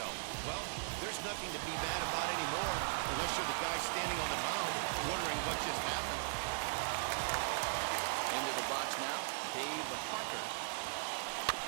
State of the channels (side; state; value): left; silent; 52 dB below the other